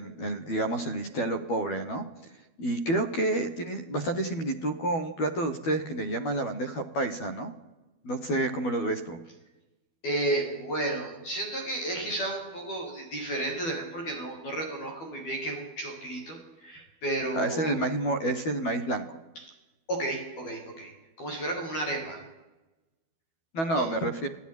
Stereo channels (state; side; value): late; right; 12 ms